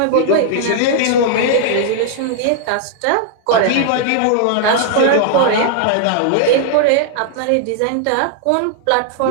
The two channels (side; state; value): both; different; correlation -0.01